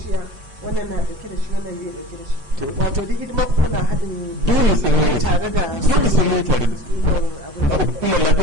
wannan na dauke da shi wannan bai dauke da shi wato duk hidima ku kuna haɗin dole sai mun yi tare da dole sai mun yi tare da su hukumar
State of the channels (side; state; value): left; late; 6.7 ms